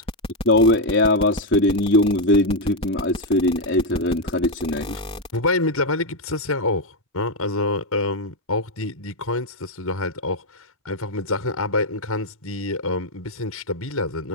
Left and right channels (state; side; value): normal; both; correlation 0.04